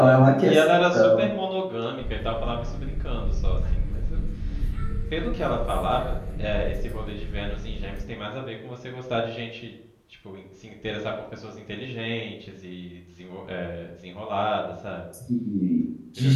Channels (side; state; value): both; identical; correlation 1.00